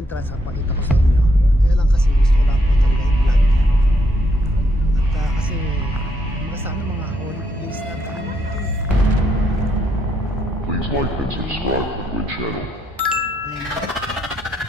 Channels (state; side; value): normal; both; correlation 0.75